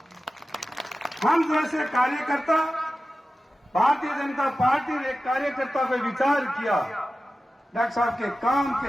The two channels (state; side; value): normal; both; correlation 0.94